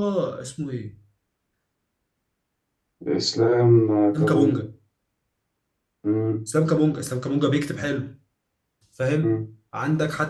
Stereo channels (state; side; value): identical; both; correlation 1.00